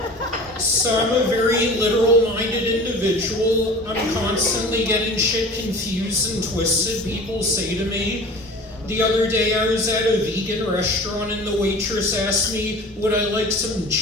So I'm a very literal-minded individual. I'm constantly getting shit confused and twisted. People say to me, the other day I was at a vegan restaurant and the waitress asked me, would I like some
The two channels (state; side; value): normal; both; correlation 0.40